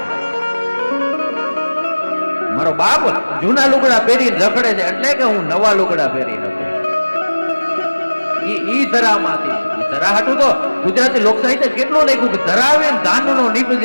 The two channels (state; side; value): inverted; both; correlation -1.00